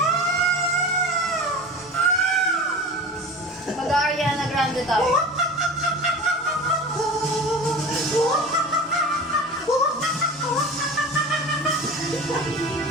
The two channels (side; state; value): both; normal; correlation 0.34